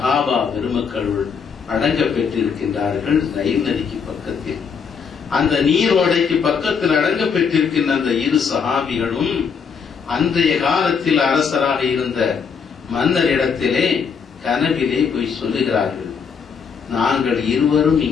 பெருமக்களுள் அடங்க பெற்றிருக்கின்றார்கள் நைல் நதிக்கு பக்கத்தில். அந்த நீரோடைக்கு பக்கத்தில் அடங்க பெற்றிருக்கின்ற அந்த 2 சஹாபிகளும் அன்றைய காலத்தில் அரசராக இருந்த மன்னர் இடத்திலே கனவிலே போய் சொல்லுகிறார்கள், நாங்கள் இருவரும்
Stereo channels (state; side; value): quieter; right; 6.2 dB